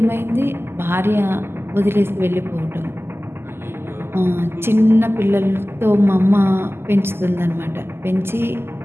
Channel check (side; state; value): left; late; 0.12 ms